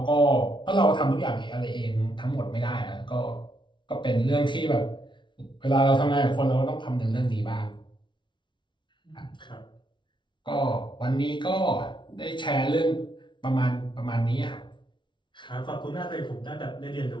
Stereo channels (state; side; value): late; right; 0.23 ms